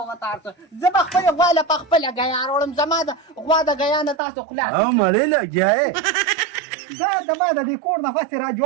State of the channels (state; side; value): drops out; left; at 4.2 s